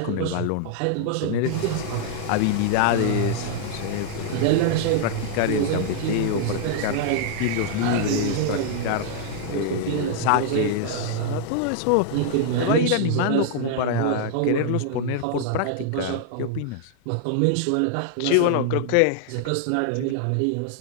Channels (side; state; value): both; different; correlation -0.01